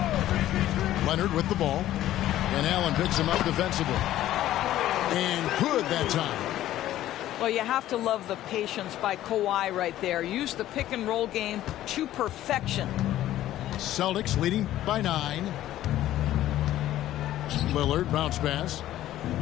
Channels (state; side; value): quieter; right; 13.6 dB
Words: Leonard with the ball. And Allen picks him up defensively. And good that time. Well, you have to love the patience by Kawhi right there. Use the pick and roll game to perfection. Celtics leading by 9. Lillard bounce pass.